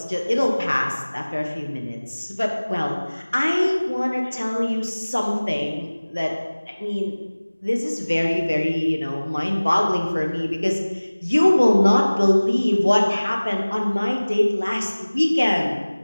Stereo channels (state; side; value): inverted; both; correlation -1.00